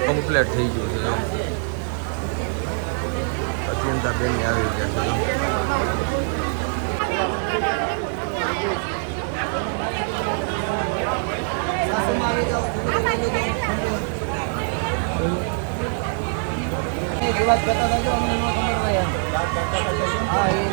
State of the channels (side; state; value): left; silent; 59 dB below the other